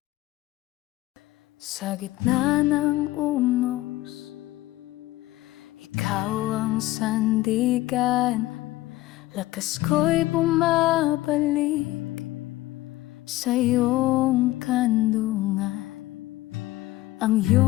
Sa gitna ng unos, ikaw ang sandigan. Lakas ko'y bumabalik sa iyong kandungan. Ang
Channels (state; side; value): quieter; right; 17.3 dB